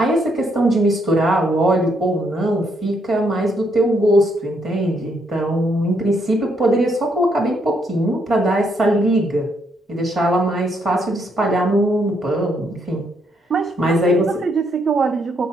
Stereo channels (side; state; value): both; normal; correlation 0.74